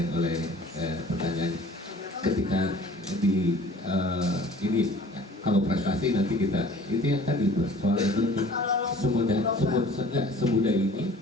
oleh pertanyaan ketika di ini kalau prestasi nanti kita itu yang tadi soal itu semudah ini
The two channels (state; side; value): normal; both; correlation 0.48